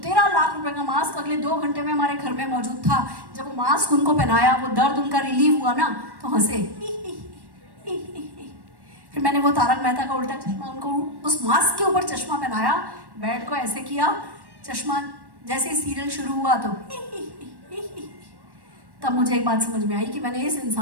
लाख रुपए का मास्क अगले 2 घंटे में हमारे घर में मौजूद था। जब वो मास्क उनको पहनाया, वो दर्द उनका रिलीव हुआ ना, तो हंसे। फिर मैंने वो तारक मेहता का उल्टा चश्मा उनको उस मास्क के ऊपर चश्मा पहनाया, बेड को ऐसे किया, चश्मा जैसे सीरियल शुरू हुआ तो तब मुझे एक बात समझ में आई कि मैंने इस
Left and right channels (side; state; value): left; late; 1.1 ms